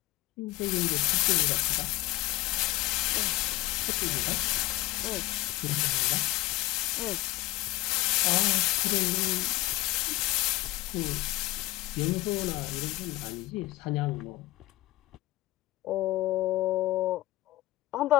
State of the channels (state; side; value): quieter; right; 18.5 dB